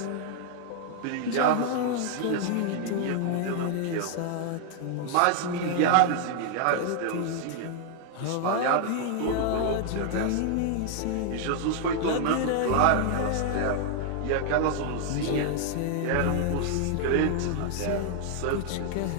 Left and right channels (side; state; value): both; different; correlation 0.00